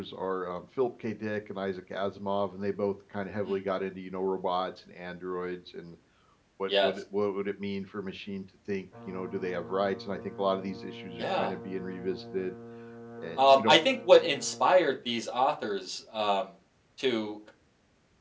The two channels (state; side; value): identical; both; correlation 1.00